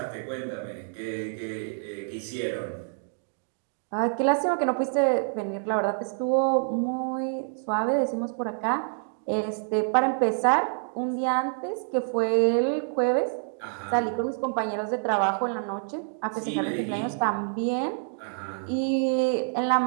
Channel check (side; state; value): left; silent; digital silence